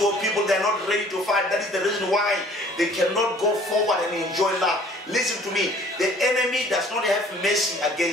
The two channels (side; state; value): both; normal; correlation 0.54